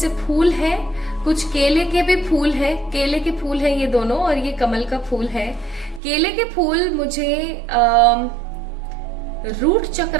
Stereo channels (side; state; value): left; drops out; at 6.0 s